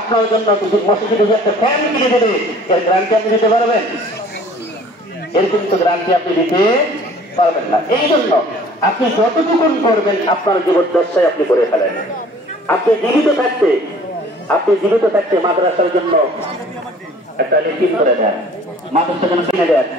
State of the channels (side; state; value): both; normal; correlation 0.51